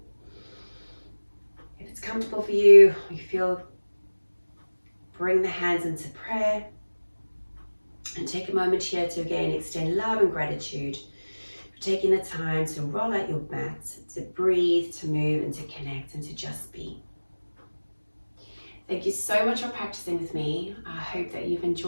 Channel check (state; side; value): inverted; both; correlation -1.00